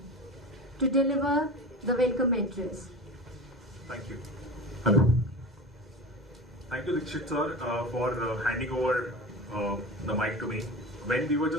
to deliver the welcome address. Thank you. Hello. Thank you, Dikshit sir, for handing over the mic to me. When we were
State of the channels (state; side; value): normal; both; correlation 0.30